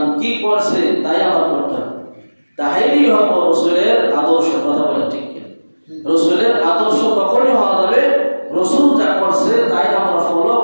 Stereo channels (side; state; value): both; inverted; correlation -1.00